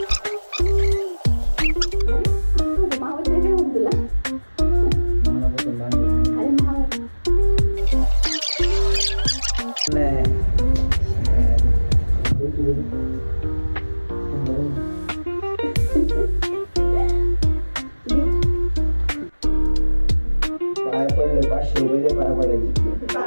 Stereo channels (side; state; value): both; inverted; correlation -1.00